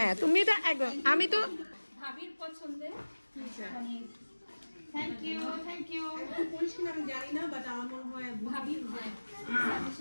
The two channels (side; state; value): both; inverted; correlation -1.00